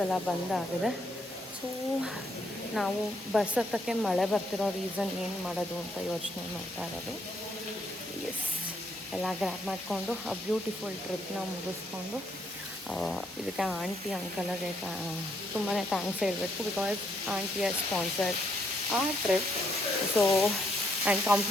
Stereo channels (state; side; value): normal; both; correlation 0.74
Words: ಎಲ್ಲ ಬಂದಾಗಿದೆ. ಸೊ ನಾವು ಬಸ್ ಹತ್ತಕ್ಕೆ ಮಳೆ ಬರ್ತಿರೋ ರೀಸನ್ ಏನು ಮಾಡೋದು ಅಂತ ಯೋಚನೆ ಮಾಡ್ತಾ ಇರೋದು. ಎಸ್, ಎಲ್ಲ ಗ್ರ್ಯಾಬ್ ಮಾಡಿಕೊಂಡು ಆ ಬ್ಯೂಟಿಫುಲ್ ಟ್ರಿಪ್ನ ಮುಗಿಸ್ಕೊಂಡು ಇದಕ್ಕೆ ಆಂಟಿ ಅಂಕಲ್ಗೆ ತುಂಬಾ ಥ್ಯಾಂಕ್ಸ್ ಹೇಳಬೇಕು. ಬಿಕಾಸ್ ಆಂಟಿಯ ಸ್ಪಾನ್ಸರ್ ಆ ಟ್ರಿಪ್. ಸೊ ಆ್ಯಂಡ್